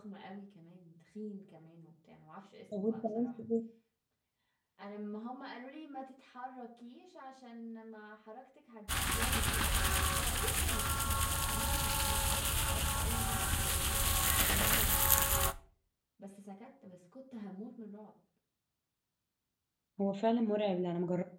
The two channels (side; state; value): both; identical; correlation 1.00